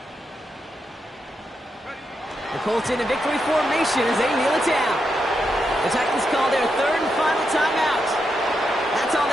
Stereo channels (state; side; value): normal; both; correlation 0.84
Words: The Colts in a victory formation as they kneel it down. The Titans call their 3rd and final timeout. That's all